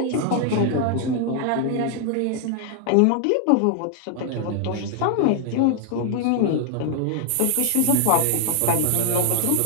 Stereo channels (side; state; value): both; different; correlation 0.00